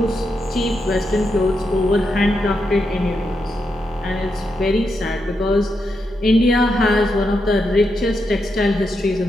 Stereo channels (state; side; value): normal; both; correlation 0.84